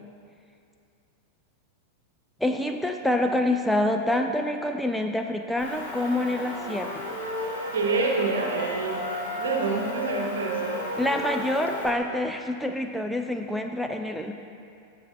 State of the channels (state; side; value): normal; both; correlation 0.44